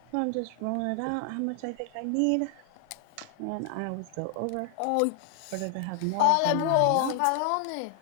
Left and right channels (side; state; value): both; different; correlation 0.00